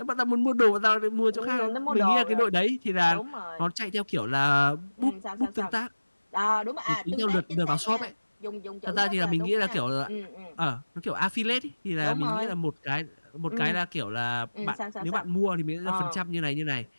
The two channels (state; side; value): inverted; both; correlation -1.00